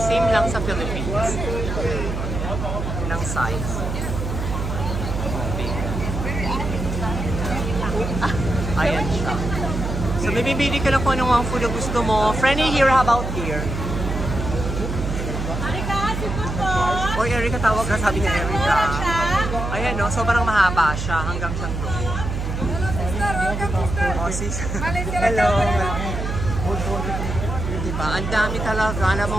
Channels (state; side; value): noise; right; hum, 3 dB below the sound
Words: same lang sa Philippines. Ng size. Ayan siya. So, may bibili ka lang kung anong mga food na gusto mo. Friendly here, how about here? Erika, sipot po. Oy, Erika, tawag ka. Sabi niya, Erika. Ayan, no? Sobrang mahaba siya hanggang siyang doon. Hello, sister. Welcome, sister. Oh, sis. Malaysia. Hello. Diba? Ang dami talaga na